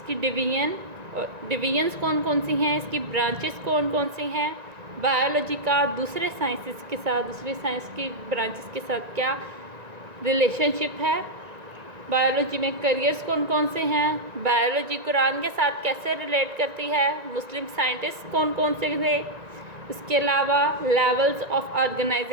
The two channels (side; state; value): left; late; 1.9 ms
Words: डिवीजन्स कौन कौन सी हैं, इसकी ब्रांचेस कौन कौन सी हैं, बायोलॉजी का दूसरे साइंसेस के साथ, दूसरे साइंस की ब्रांचेस के साथ क्या रिलेशनशिप है, बायोलॉजी में करियर्स कौन कौन से हैं, बायोलॉजी कुरान के साथ कैसे रिलेट करती है, मुस्लिम साइंटिस्ट कौन कौन से थे, इसके अलावा लेवल्स ऑफ